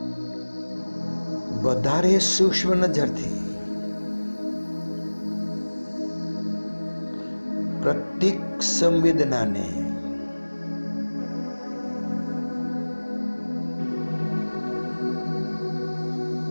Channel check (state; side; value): inverted; both; correlation -1.00